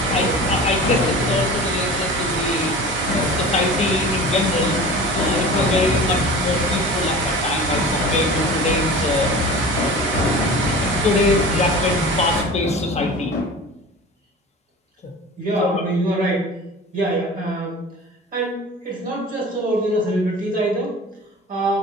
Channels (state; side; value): normal; both; correlation 0.37